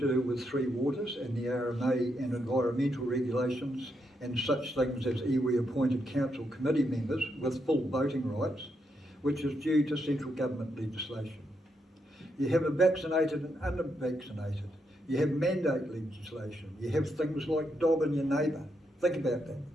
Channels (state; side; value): normal; both; correlation 0.80